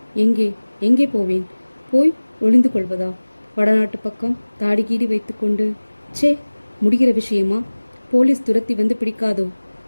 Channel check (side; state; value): both; inverted; correlation -1.00